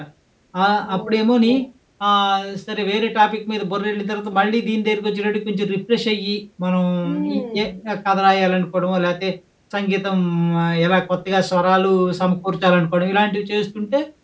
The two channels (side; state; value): both; identical; correlation 1.00